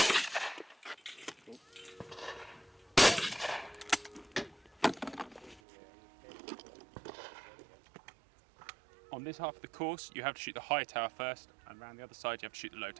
On this half of the course, you have to shoot the high tower first, and around the other side, you have to shoot the low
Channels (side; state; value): left; drops out; at 5.6 s